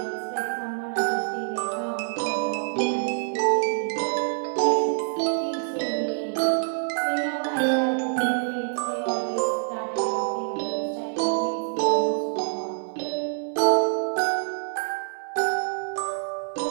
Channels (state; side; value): silent; left; digital silence